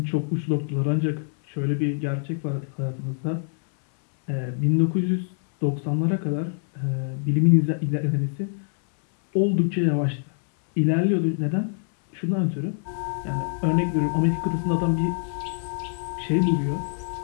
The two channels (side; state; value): right; silent; 62 dB below the other